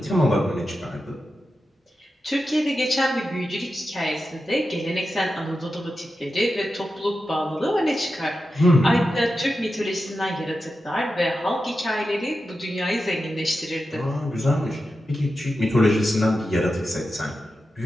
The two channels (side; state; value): both; normal; correlation 0.91